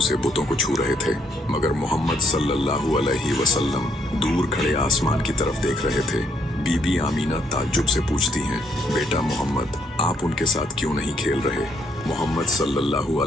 बुतों को छू रहे थे, मगर मोहम्मद सल्लल्लाहु अलैहि वसल्लम दूर खड़े आसमान की तरफ देख रहे थे। बीबी आमिना ताज्जुब से पूछती हैं, बेटा मोहम्मद, आप उनके साथ क्यों नहीं खेल रहे? मोहम्मद सल्लल्लाहु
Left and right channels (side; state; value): both; normal; correlation 0.71